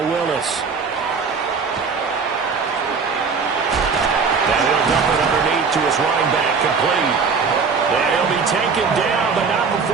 Willis. And he'll dump it underneath to his running back, complete. And he'll be taken down, but not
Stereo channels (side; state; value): left; quieter; 5.3 dB